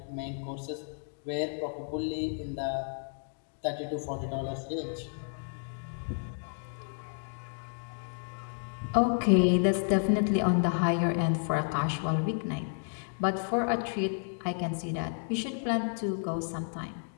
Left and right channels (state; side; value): silent; right; digital silence